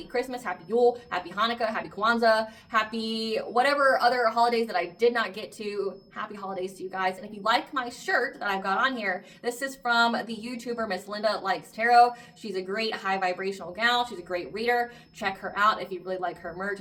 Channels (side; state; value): both; identical; correlation 1.00